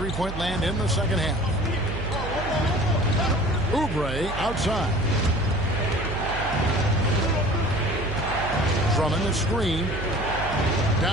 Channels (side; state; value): right; noise; hum, 7 dB below the sound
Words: land in the second half. Oubre outside. Drummond the screen.